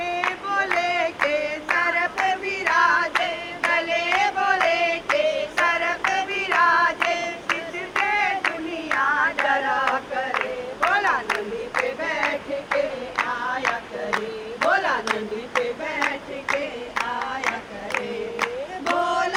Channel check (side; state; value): both; identical; correlation 1.00